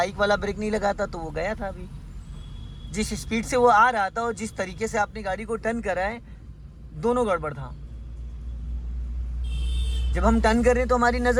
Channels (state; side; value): identical; both; correlation 1.00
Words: वाला ब्रेक नहीं लगाता तो वो गया था। अभी जिस स्पीड से वो आ रहा था और जिस तरीके से आपने गाड़ी को टर्न करा है, दोनों गड़बड़ था। जब हम टर्न कर रहे हैं तो हमारी